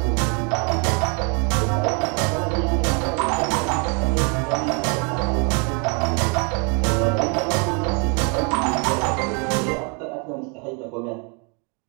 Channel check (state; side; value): quieter; left; 34.9 dB